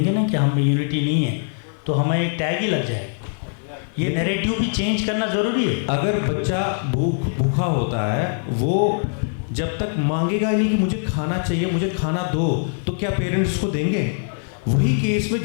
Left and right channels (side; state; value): right; silent; digital silence